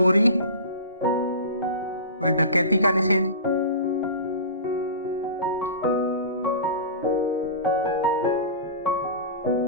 व डकैती का निषेध,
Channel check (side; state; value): both; inverted; correlation -0.33